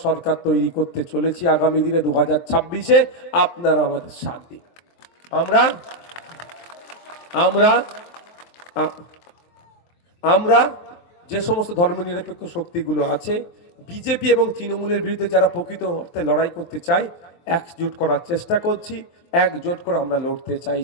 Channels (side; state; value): right; late; 23 ms